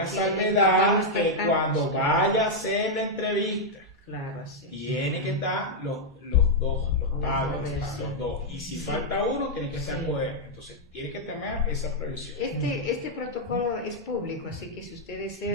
salvedad que cuando vaya a hacer la entrevista, tiene que estar los dos, los padres, los dos. Y si falta uno, tiene que ser poder. Entonces, tiene que tener esa previsión. Este protocolo es público, así que si usted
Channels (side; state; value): both; normal; correlation -0.02